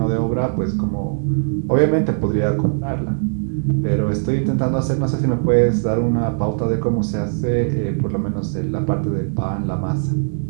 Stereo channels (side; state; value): left; silent; digital silence